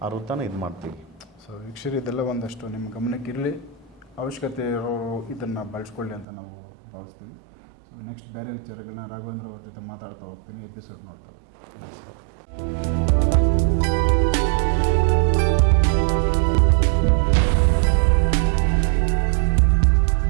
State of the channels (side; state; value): left; drops out; at 6.2 s